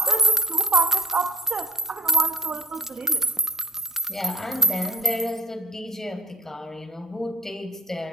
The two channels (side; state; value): both; normal; correlation 0.41